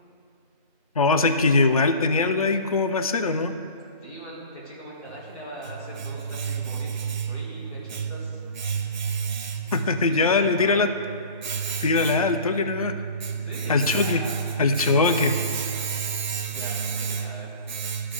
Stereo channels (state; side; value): inverted; both; correlation -0.39